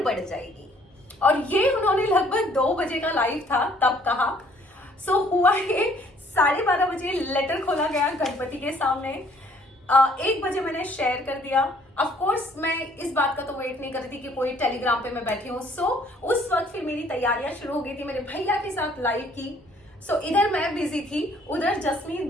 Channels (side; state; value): both; normal; correlation 0.61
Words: बढ़ जाएगी। और ये उन्होंने लगभग 2 बजे का लाइव था तब कहा। सो हुआ ये 12:30 बजे लेटर खोला गया गणपति के सामने। 1 बजे मैंने शेयर कर दिया। ऑफ कोर्स मैं इस बात का तो वेट नहीं कर रही थी कि कोई टेलीग्राम पे मैं बैठी हूँ। सो उस वक्त फिर मेरी तैयारियां शुरू हो गई थी मेरे भैया के साथ लाइव की। सो इधर मैं बिजी थी, उधर जसमीत